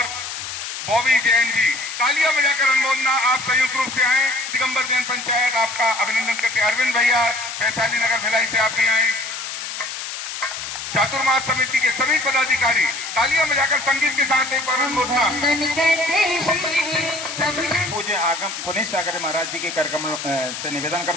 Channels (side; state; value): left; noise; hiss, 7 dB below the sound